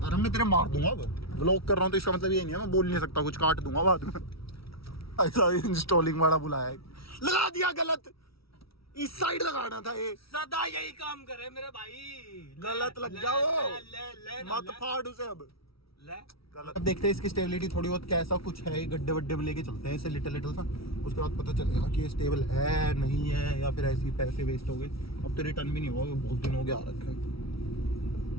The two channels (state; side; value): late; right; 0.75 ms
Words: अरे मैं तेरे मार दूंगा, वो व्लॉग कर रहा हूँ तो इसका मतलब ये नहीं है मैं बोल नहीं सकता कुछ, काट दूंगा बाद में। ऐसा इंस्टॉलिंग वाला बुलाया है, लगा दिया गलत, इस साइड लगाना था ये। सदा यही काम करे मेरे भाई, गलत लग गया वो, मत फाड़ उसे अब। अब देखते हैं इसकी स्टेबिलिटी थोड़ी बहुत कैसा कुछ है, गड्ढे वड्ढे में लेके चलते हैं इसे लिटिल सा, उसके बाद पता चलेगा कि ये स्टेबल है नहीं है, या फिर ऐसे ही पैसे वेस्ट हो गए। अब तो रिटर्न भी नहीं होगा, बहुत दिन हो गया आ रखा है,